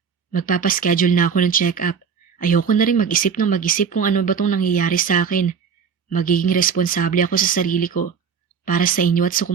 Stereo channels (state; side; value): quieter; left; 6.7 dB